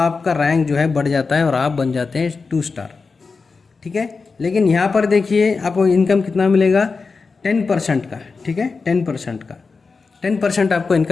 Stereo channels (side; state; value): right; quieter; 4.5 dB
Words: रैंक जो है बढ़ जाता है और आप बन जाते हैं 2 स्टार, ठीक है। लेकिन यहाँ पर देखिए आपको इनकम कितना मिलेगा, 10% का, ठीक है, 10% का, 10% आपको